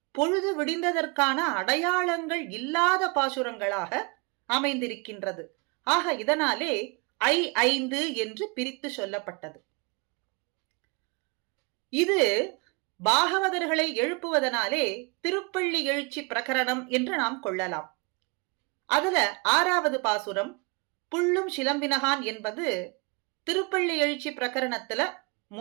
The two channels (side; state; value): left; quieter; 30.1 dB